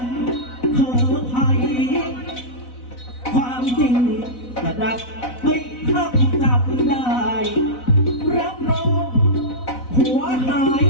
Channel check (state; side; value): late; right; 4.0 ms